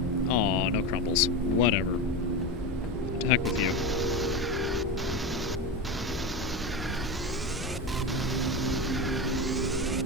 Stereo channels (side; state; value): both; normal; correlation 0.20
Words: Aw, no crumbles. Whatever. To heck with you.